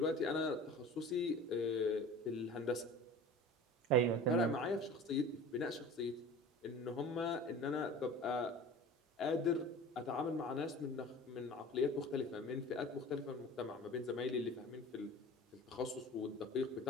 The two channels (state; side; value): normal; both; correlation 0.39